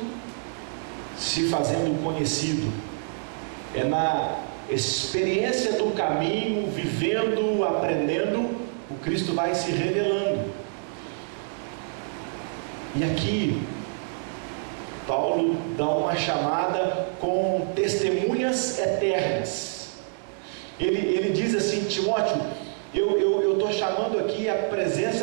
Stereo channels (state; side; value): silent; left; digital silence